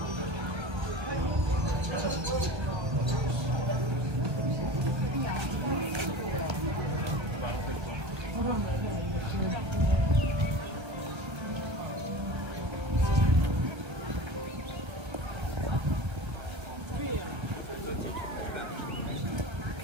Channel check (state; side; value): late; left; 1.3 ms